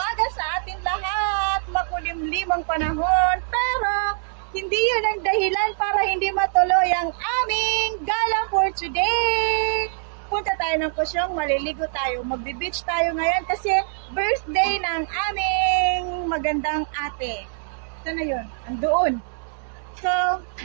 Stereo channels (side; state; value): left; silent; 60 dB below the other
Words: sa atin lahat. Makulimlim ang panahon, pero hindi yun ang dahilan para hindi matuloy ang aming gala for today. Punta tayo ng Kusyong, maliligo tayo, magbe-beach tayo ngayon kasi birthday ng aming magandang ate. Sana yun? Andoon. So,